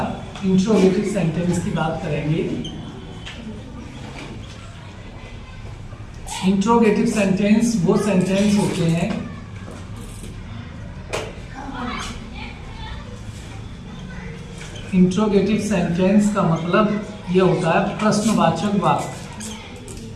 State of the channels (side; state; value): both; identical; correlation 1.00